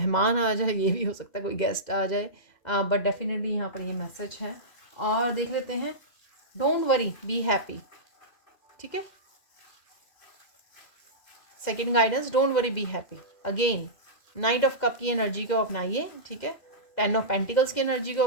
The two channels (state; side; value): late; right; 2.0 ms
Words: आ जाए, ये भी हो सकता है कोई गेस्ट आ जाए, बट डेफ़िनेटली यहाँ पर ये मैसेज है। और देख लेते हैं, डोंट वरी बी हैप्पी, ठीक है? Second guidance, don't worry be happy. Again night of cup की एनर्जी को अपनाइए, ठीक है? 10 ऑफ पेंटिकल्स की एनर्जी को